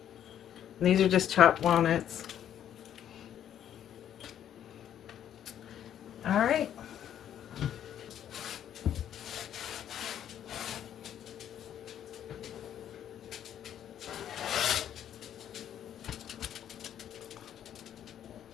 these are just chopped walnuts. All right.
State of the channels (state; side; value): quieter; right; 10.2 dB